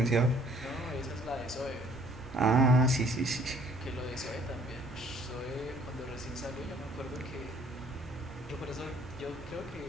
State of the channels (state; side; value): normal; both; correlation 0.59